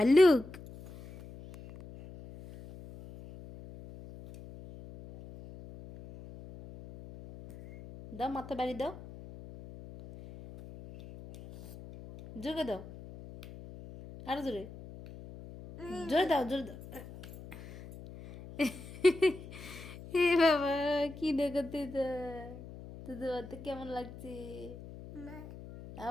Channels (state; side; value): noise; left; hum, 15 dB below the sound